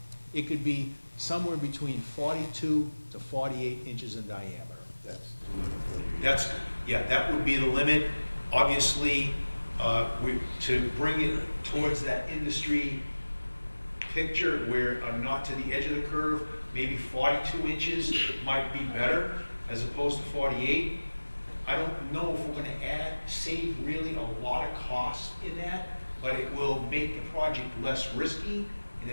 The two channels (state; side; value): inverted; both; correlation -1.00